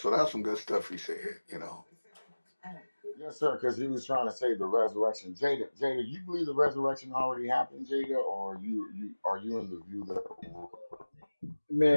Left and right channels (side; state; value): both; inverted; correlation -1.00